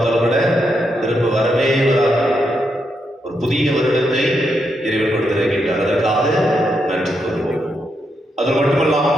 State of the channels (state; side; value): normal; both; correlation 0.81